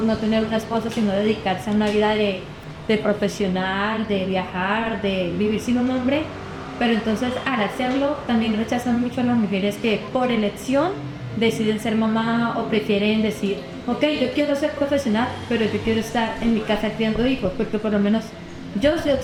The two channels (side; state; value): both; identical; correlation 1.00